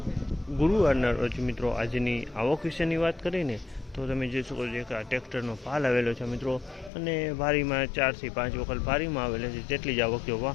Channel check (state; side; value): drops out; right; at 6.9 s